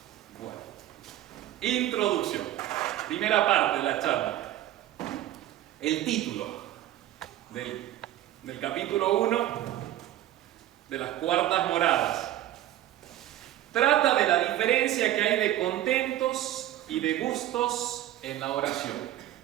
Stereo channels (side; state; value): left; quieter; 13.5 dB